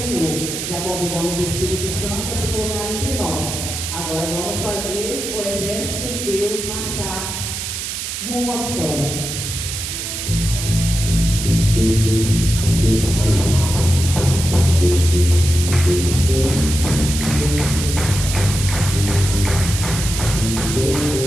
Já convidamos o Espírito Santo a se colocar entre nós. Agora vamos fazer o exército de Deus marchar rumo à vitória.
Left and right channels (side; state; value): right; noise; hiss, 5 dB below the sound